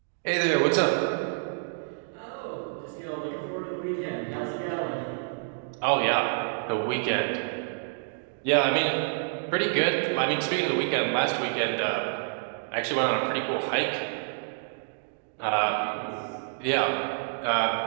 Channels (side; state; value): left; silent; digital silence